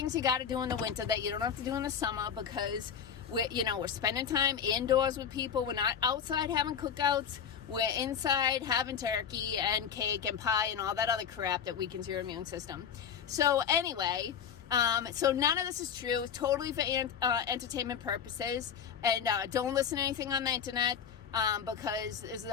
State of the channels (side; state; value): right; quieter; 7.9 dB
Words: you got to do in the winter that you don't have to do in the summer, because we're spending time indoors with people. We're not outside having cookouts. We're inside having turkey and cake and pie and all that other crap that weakens your immune system. So anyway, so none of this is true. It's totally for entertainment purposes. And don't listen to anything on the internet because it's